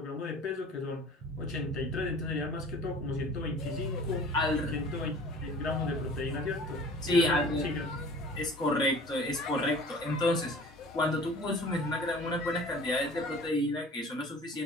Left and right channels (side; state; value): both; normal; correlation 0.45